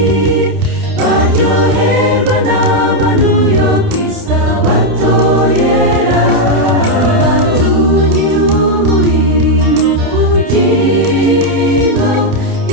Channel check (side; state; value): left; late; 29 ms